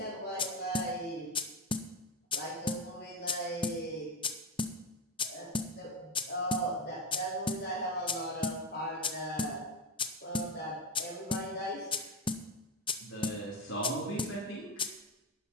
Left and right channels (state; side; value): normal; both; correlation 0.13